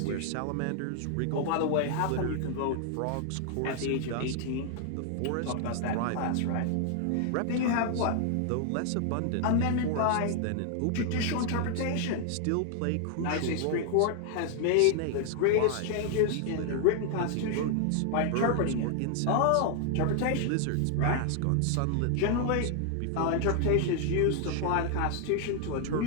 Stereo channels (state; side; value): different; both; correlation 0.00